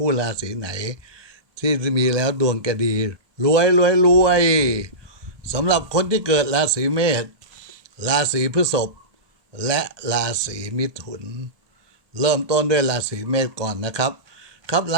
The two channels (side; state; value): left; late; 1.2 ms